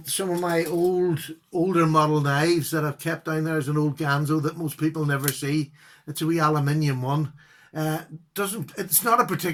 some of my older model knives that I've kept down there is an old Ganzo that most people never see. It's a wee aluminium one. It's not a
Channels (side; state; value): both; identical; correlation 1.00